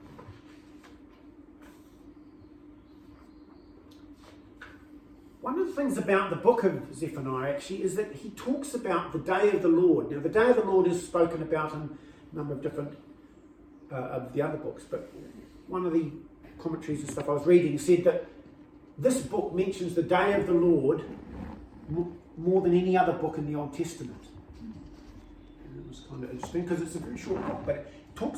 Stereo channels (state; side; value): identical; both; correlation 1.00